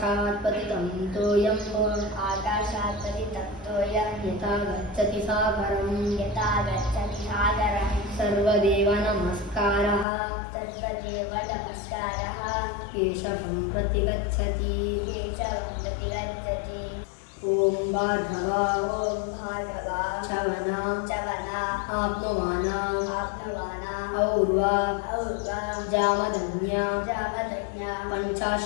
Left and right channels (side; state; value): right; drops out; at 10.1 s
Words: पतितं तोयं आकाशात् पतितं तोयं यथा गच्छति सागरं सर्वदेव नमस्कारः केशवं प्रति गच्छति ओम भार्गव चवना आप्नुवाना और्वा जामदन्या